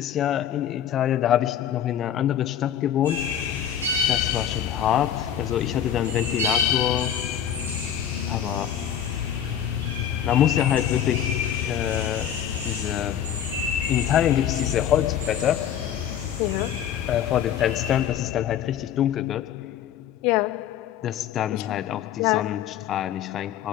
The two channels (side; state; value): right; quieter; 9.6 dB